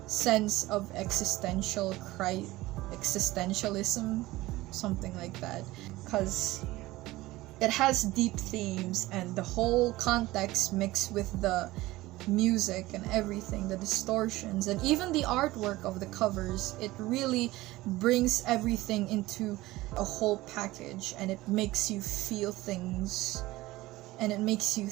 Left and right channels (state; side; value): quieter; left; 18.4 dB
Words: sense of existentialism, something like that, because it has deep themes, and the whole context mixed with the music and everything, the distortions, and even the artwork of the covers, it really brings everything into a whole package, and it makes you feel things, and it makes you